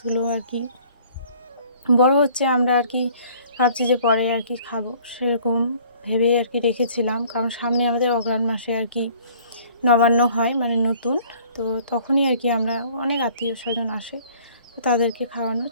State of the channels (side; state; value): both; inverted; correlation -0.55